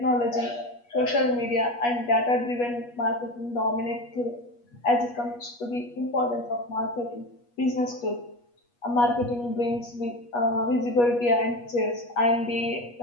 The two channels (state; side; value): late; right; 8.3 ms